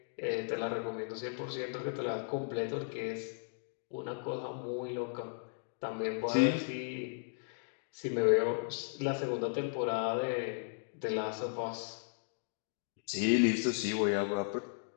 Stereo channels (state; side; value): silent; right; digital silence